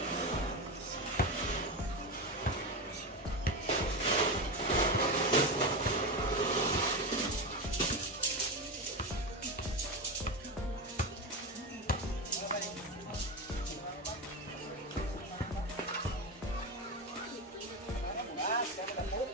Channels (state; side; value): normal; both; correlation 0.17